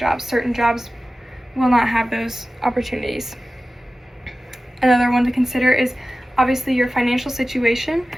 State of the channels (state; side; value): normal; both; correlation 0.96